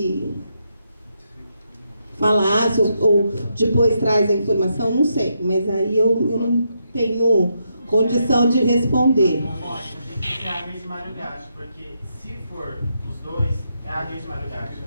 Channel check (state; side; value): inverted; both; correlation -0.80